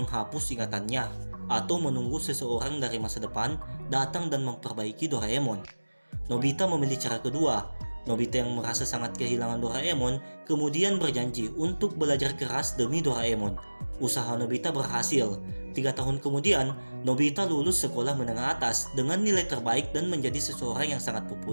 ingatannya, atau menunggu seseorang dari masa depan datang dan memperbaiki Doraemon. Nobita memilih cara kedua. Nobita yang merasa sangat kehilangan Doraemon kemudian berjanji untuk belajar keras demi Doraemon. Usaha Nobita berhasil. 3 tahun kemudian, Nobita lulus sekolah menengah atas dengan nilai terbaik dan menjadi seseorang yang sangat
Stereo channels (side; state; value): both; inverted; correlation -1.00